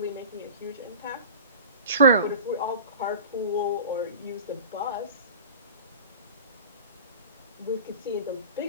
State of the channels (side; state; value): both; inverted; correlation -0.36